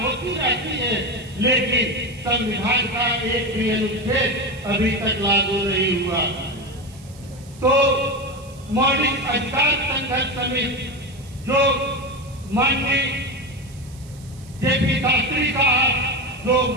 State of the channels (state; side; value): noise; right; hiss, 23 dB below the sound